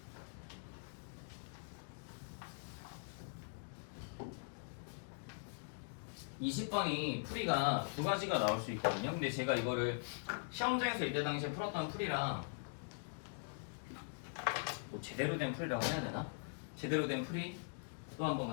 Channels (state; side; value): silent; right; digital silence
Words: 이십 번이 풀이가 두 가지가 나올 수 있거든요. 근데 제가 이거를 시험장에서 이때 당시에 풀었던 풀이랑 뭐 제대로 된 풀이라고 해야 되나? 제대로 된 풀이 또 한번